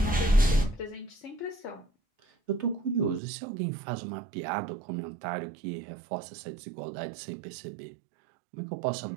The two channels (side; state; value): left; drops out; at 3.2 s